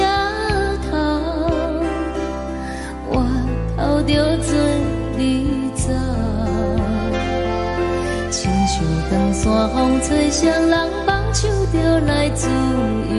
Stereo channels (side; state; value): both; identical; correlation 1.00